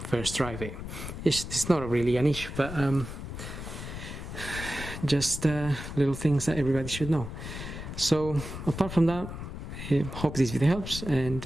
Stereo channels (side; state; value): left; noise; rumble, 9 dB below the sound